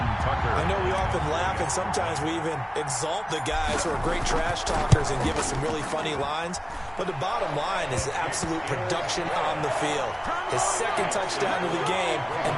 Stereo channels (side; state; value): both; identical; correlation 1.00